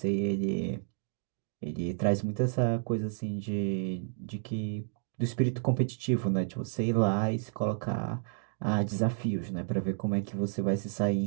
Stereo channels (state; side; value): silent; left; digital silence